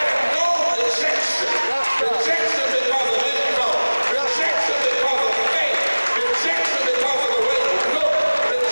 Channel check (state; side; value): inverted; both; correlation -1.00